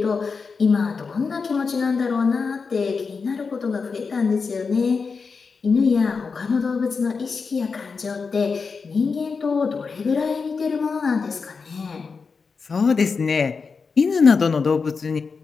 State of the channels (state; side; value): quieter; right; 5.0 dB